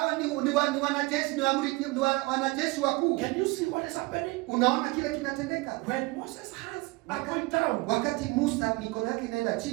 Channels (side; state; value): left; quieter; 23.8 dB